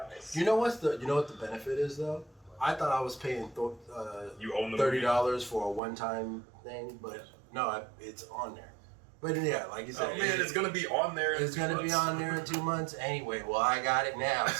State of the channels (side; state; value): left; drops out; at 5.8 s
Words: you know what the benefit is though? I thought I was paying You own the $30 for a one-time thing, but no, it's on there. But yeah, like you said, Oh man, it's gonna be on there. It's going to be on there in 2 months anyway. Well, I got it now,